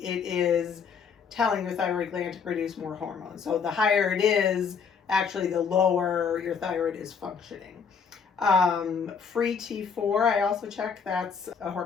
it is telling your thyroid gland to produce more hormone. So the higher it is, actually the lower your thyroid is functioning. Free T4, I also check. That's a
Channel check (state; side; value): quieter; right; 6.2 dB